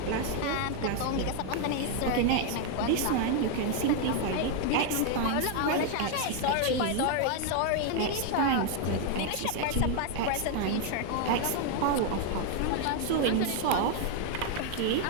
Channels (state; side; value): different; both; correlation 0.00